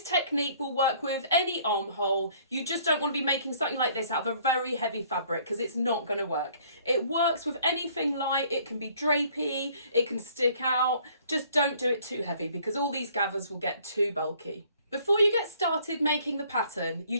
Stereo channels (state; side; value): inverted; both; correlation -0.59